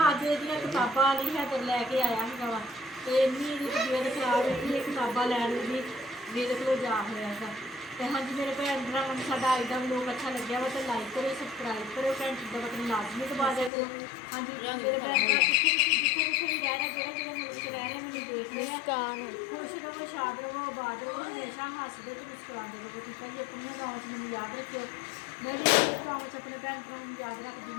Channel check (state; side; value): drops out; right; at 13.7 s